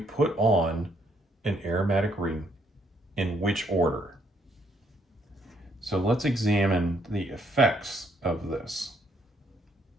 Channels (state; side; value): normal; both; correlation 0.70